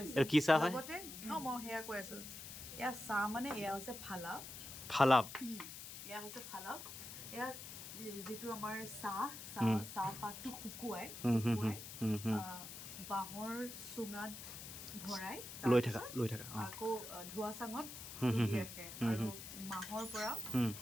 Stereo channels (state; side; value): noise; left; hiss, 10 dB below the sound